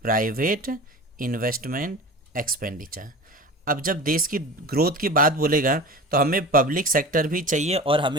private investment expenditure. अब जब देश की ग्रोथ की बात बोलेगा तो हमें पब्लिक सेक्टर भी चाहिए और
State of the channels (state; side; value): normal; both; correlation 0.34